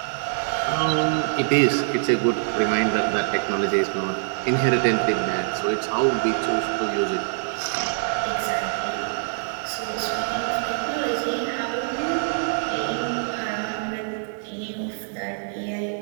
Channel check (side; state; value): left; silent; digital silence